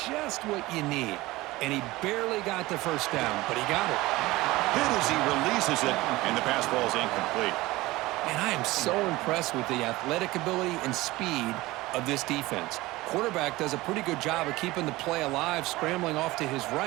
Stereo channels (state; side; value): quieter; left; 19.4 dB